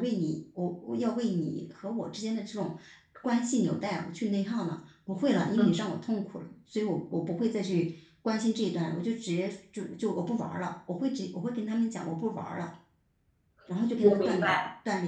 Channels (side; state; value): both; identical; correlation 1.00